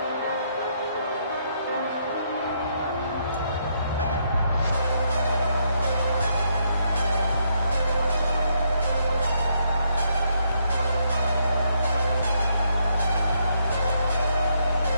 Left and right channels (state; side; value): inverted; both; correlation -0.74